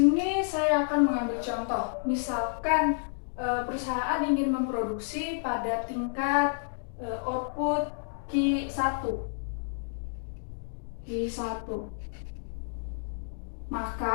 saya akan mengambil contoh. Misalkan perusahaan ingin memproduksi pada tingkat output Q1.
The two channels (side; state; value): right; silent; digital silence